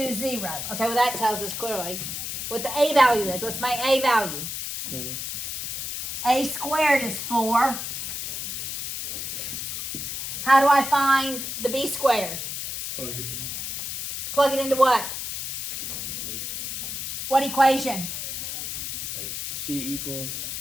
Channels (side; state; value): left; noise; hiss, 4 dB below the sound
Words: 0. Okay, well that tells us clearly what the A value is. What's my A value? 4. A squared is 4. How do I find the B squared? Plug it into what? Equation. What equation? X. C equals